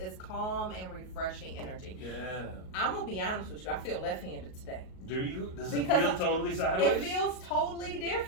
calm and refreshing energy. Yeah. I'm gonna be honest with you, I feel left-handed today. Do you? Does it Because feel totally sideways? It feels totally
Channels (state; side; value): late; right; 38 ms